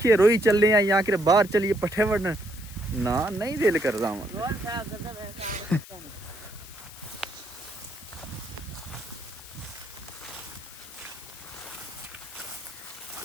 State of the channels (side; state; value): left; noise; hiss, 17 dB below the sound